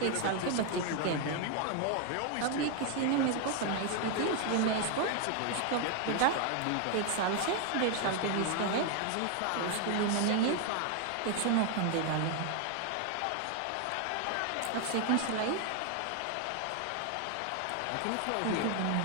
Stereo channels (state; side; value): different; both; correlation 0.01